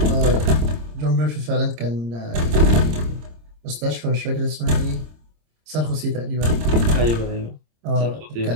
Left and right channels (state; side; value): late; left; 26 ms